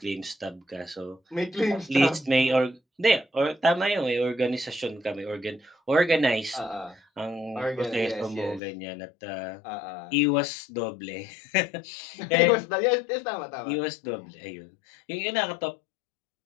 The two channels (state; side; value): drops out; right; at 8.6 s